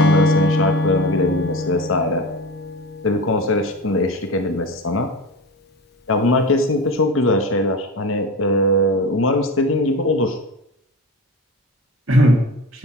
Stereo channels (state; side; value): normal; both; correlation 0.29